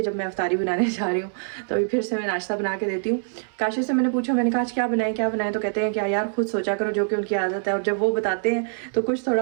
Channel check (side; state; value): left; silent; digital silence